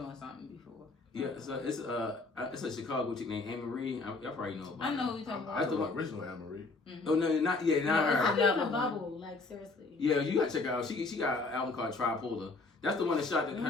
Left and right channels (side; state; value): right; quieter; 3.6 dB